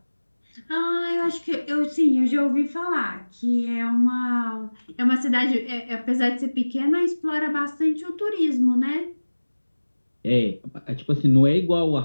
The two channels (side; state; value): both; inverted; correlation -1.00